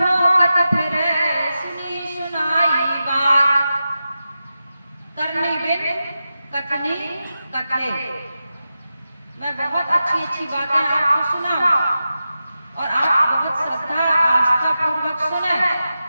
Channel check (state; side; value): inverted; both; correlation -0.91